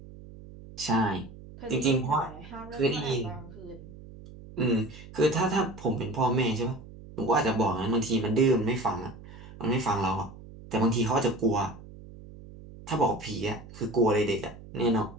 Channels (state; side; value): noise; right; hum, 17 dB below the sound